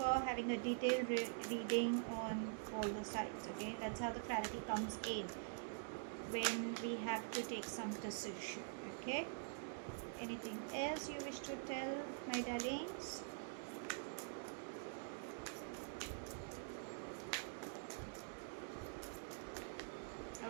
having a detailed reading on all the sides. Okay, that's how the clarity comes in when we have to take some decision. Okay, anything else you wish to tell my darlings?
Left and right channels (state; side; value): silent; left; digital silence